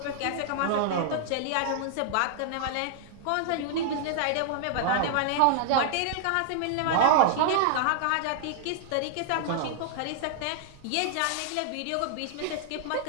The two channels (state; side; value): different; both; correlation -0.01